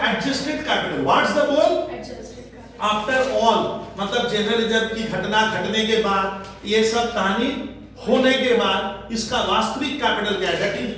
adjusted capital? What's the बोल? आफ्टर ऑल, मतलब जनरल रिजर्व की घटना घटने के बाद, ये सब कहानी होने के बाद इसका वास्तविक कैपिटल क्या है? That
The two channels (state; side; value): identical; both; correlation 1.00